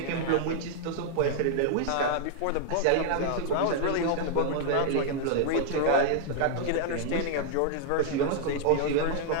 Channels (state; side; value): different; both; correlation -0.01